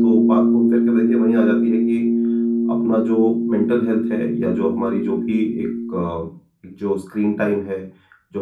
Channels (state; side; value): identical; both; correlation 1.00